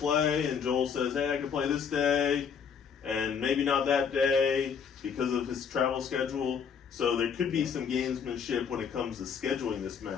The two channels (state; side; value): quieter; right; 6.7 dB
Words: and Joel says, hey, I can play this day, and maybe not that day because of his travel schedule. So there could be some gamesmanship when it comes to scheduling this